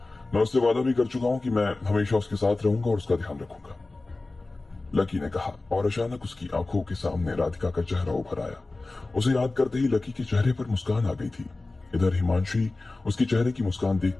मैं उससे वादा भी कर चुका हूं कि मैं हमेशा उसके साथ रहूंगा और उसका ध्यान रखूंगा, लकी ने कहा। और अचानक उसकी आंखों के सामने राधिका का चेहरा उभर आया। उसे याद करते ही लकी के चेहरे पर मुस्कान आ गई थी। इधर हिमांशी उसके चेहरे की मुस्कान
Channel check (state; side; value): quieter; right; 3.2 dB